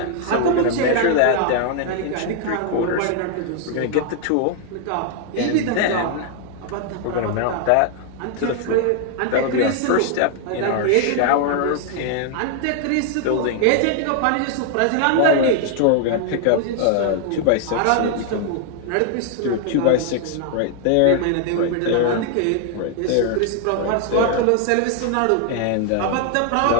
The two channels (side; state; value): both; different; correlation 0.00